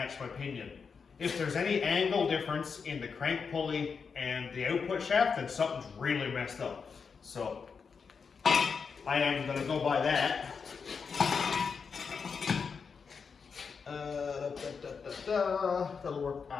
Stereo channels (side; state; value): right; quieter; 5.7 dB